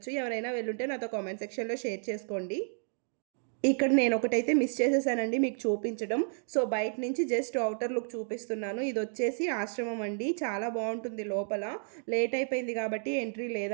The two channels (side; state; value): left; silent; 57 dB below the other